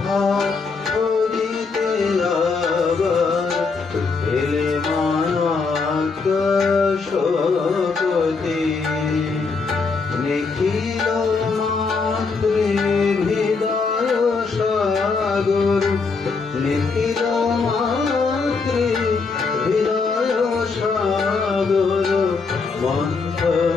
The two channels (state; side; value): quieter; right; 4.6 dB